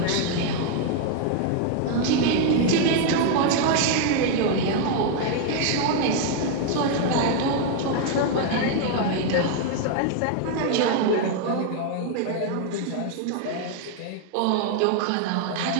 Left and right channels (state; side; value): different; both; correlation 0.00